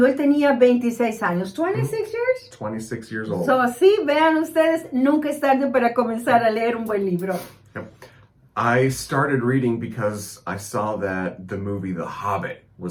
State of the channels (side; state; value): both; identical; correlation 1.00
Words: él tenía 26 años. 26 years? 26 years old. So, sí, vean ustedes, nunca es tarde para comenzar a leer un buen libro. Yep. I started reading because I saw that the movie The Hobbit